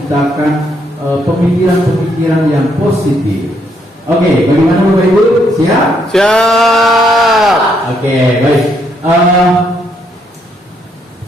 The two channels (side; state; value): both; normal; correlation 0.73